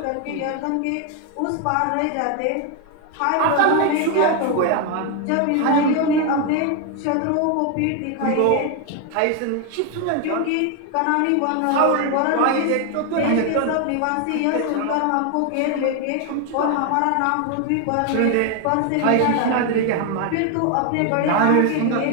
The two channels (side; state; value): both; different; correlation 0.01